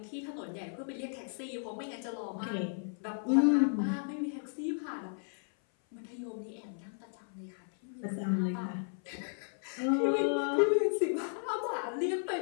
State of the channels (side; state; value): right; silent; 55 dB below the other